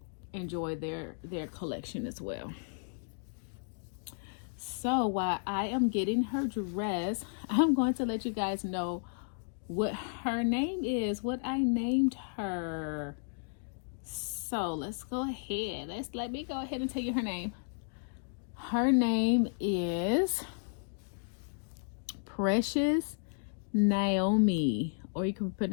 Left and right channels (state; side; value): silent; right; digital silence